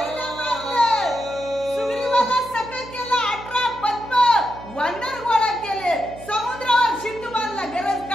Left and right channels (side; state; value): right; noise; hum, 17 dB below the sound